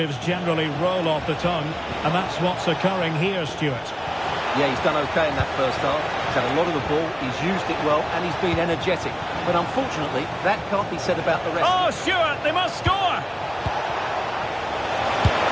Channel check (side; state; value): both; identical; correlation 1.00